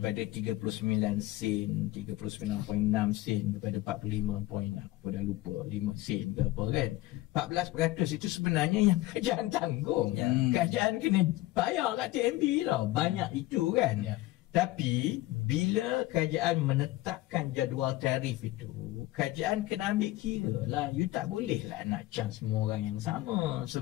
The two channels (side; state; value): right; quieter; 17.4 dB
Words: 39 sen, 39.6 sen kepada 45 point, aku dah lupa 5 sen ke apa kan. 14% itu sebenarnya yang kerajaan tanggung. Kerajaan kena bayar kat TNB tau. Banyak itu kan. Tapi bila kerajaan menetapkan jadual tarif itu, kerajaan kena ambil kira lah. You tak boleh lah nak charge semua orang yang sama.